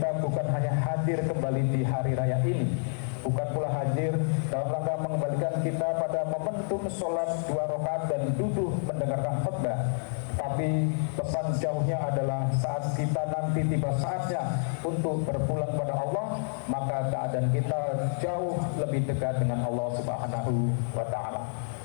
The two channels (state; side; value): silent; right; 59 dB below the other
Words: bukan hanya hadir kembali di hari raya ini, bukan pula hadir dalam rangka mengembalikan kita pada momentum sholat 2 rakaat dan duduk mendengarkan khutbah, tapi pesan jauhnya adalah saat kita nanti tiba saatnya untuk berpulang pada Allah, maka keadaan kita jauh lebih dekat dengan Allah Subhanahu wa Ta'ala.